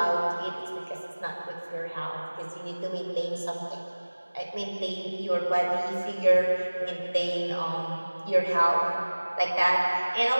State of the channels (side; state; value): both; inverted; correlation -1.00